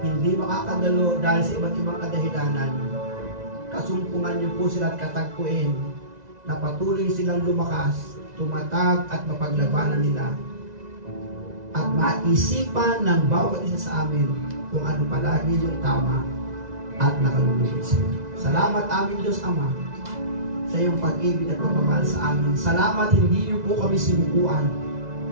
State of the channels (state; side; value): late; left; 2.0 ms